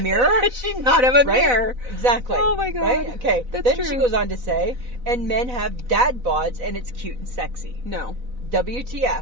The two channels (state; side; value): late; left; 4.0 ms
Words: Does she not have a Right? mirror? Exactly. Oh my God. Right? Okay. That's then true. she goes on to say, and men have dad bods and it's cute and sexy. No.